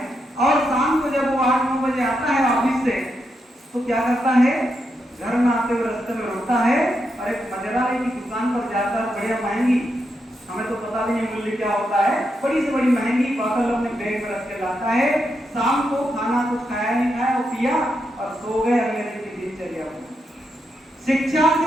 और शाम को जब वो 8-9 बजे आता है ऑफिस से, तो क्या करता है, घर में आते हुए रास्ते में रोता है और एक मदिरालय की दुकान पर जाता है, बढ़िया महंगी, हमें तो पता भी नहीं मूल्य क्या होता है, बड़ी से बड़ी महंगी बोतल अपने बैग में रख के लाता है। शाम को खाना कुछ खाया नहीं खाया, वो पिया और सो गए। अगले दिन की दिनचर्या। शिक्षा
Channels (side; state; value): both; normal; correlation 0.83